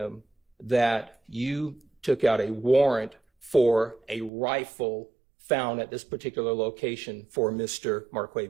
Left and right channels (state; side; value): drops out; left; at 4.3 s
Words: that you took out a warrant for a rifle found at this particular location for Mr.